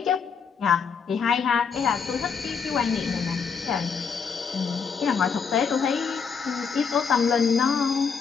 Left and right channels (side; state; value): right; quieter; 6.0 dB